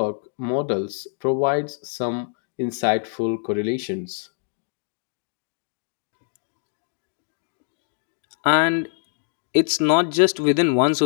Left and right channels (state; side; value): silent; right; 62 dB below the other